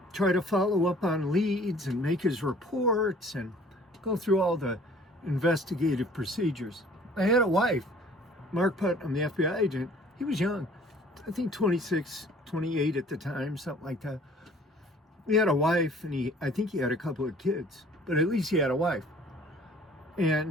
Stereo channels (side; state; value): both; normal; correlation 0.53